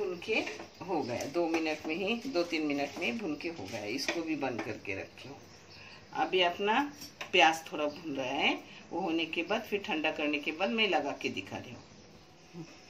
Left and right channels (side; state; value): both; identical; correlation 1.00